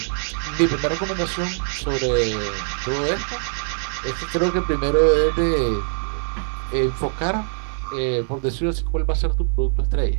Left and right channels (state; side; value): silent; left; 64 dB below the other